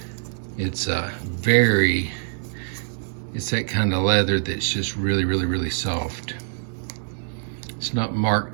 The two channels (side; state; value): left; silent; digital silence